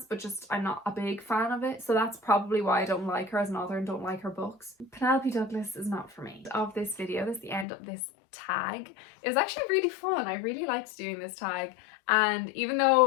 but just I'm not a big fan of it. So that's probably why I don't like her as an author and don't like her books. Penelope Douglas is not for me. Of this video, that's the end of this tag. It was actually really fun. I really liked doing this tag. And even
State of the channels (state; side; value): drops out; right; at 7.7 s